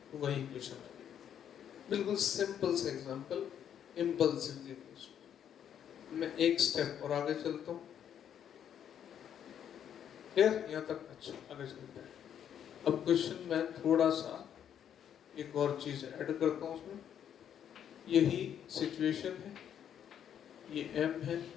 तो वही इक्वेशन है, बिल्कुल सिंपल सा एग्जांपल, इम्पल्सिव इक्वेशन। मैं एक स्टेप और आगे चलता हूँ, क्लियर यहाँ तक? अच्छा, आगे चलते हैं। अब क्वेश्चन में थोड़ा सा एक और चीज ऐड करता हूँ उसमें, यही सिचुएशन है, ये m है,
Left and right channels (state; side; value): quieter; right; 9.2 dB